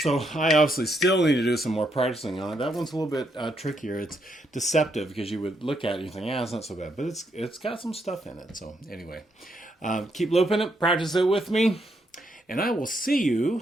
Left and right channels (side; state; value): both; normal; correlation 0.77